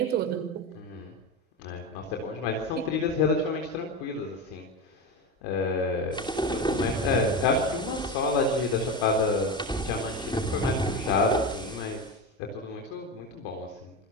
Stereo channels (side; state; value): both; normal; correlation 0.21